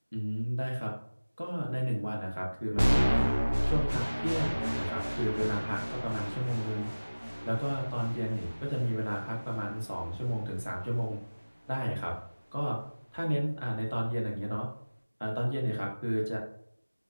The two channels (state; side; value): inverted; both; correlation -1.00